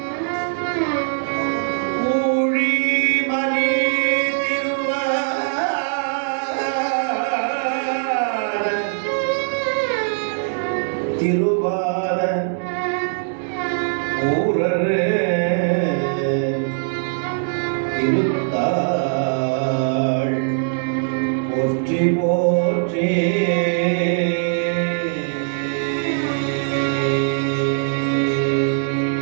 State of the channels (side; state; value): left; silent; digital silence